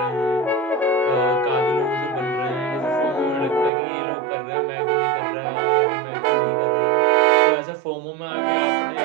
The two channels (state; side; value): drops out; left; at 3.7 s